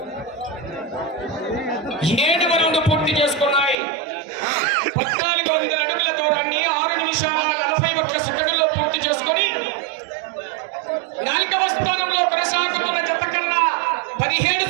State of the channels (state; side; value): drops out; left; at 3.8 s